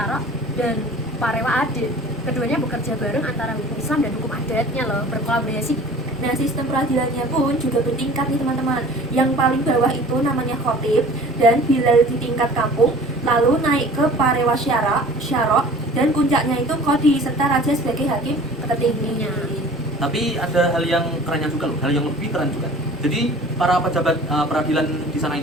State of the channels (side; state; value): both; normal; correlation 0.45